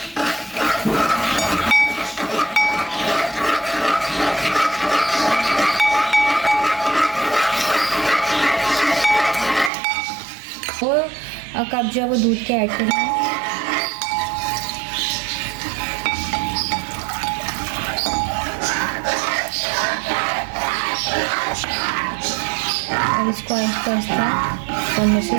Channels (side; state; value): left; drops out; at 9.7 s